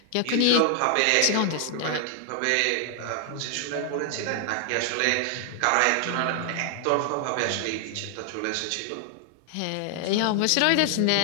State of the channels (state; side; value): different; both; correlation 0.00